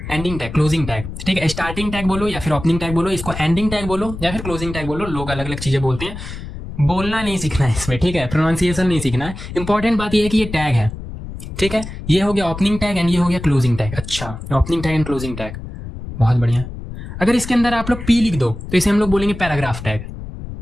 एंडिंग टैग, क्लोजिंग टैग, ठीक है। स्टार्टिंग टैग बोलो या फिर ओपनिंग टैग बोलो, इसको एंडिंग टैग बोलो या फिर क्लोजिंग टैग बोलो, लोग अलग अलग चीजें बोलते हैं, बोलना नहीं सीखना है इसमें, ठीक है, प्रोनाउंसिएशन नहीं सीखना है। इंपॉर्टेंट बात ये है कि ये टैग है, ठीक है। ये हो गया ओपनिंग टैग एंड ये हो गया क्लोजिंग टैग। अच्छा opening tag and closing tag, बहुत बढ़िया। अगर इसके अंदर आप लोग पी लिख दो तो इसे हम लोग बोलेंगे पैराग्राफ टैग।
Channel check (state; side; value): noise; left; rumble, 10 dB below the sound